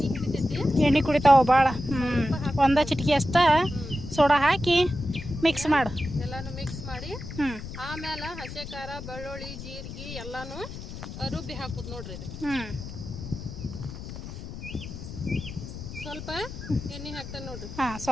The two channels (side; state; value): left; noise; rumble, 10 dB below the sound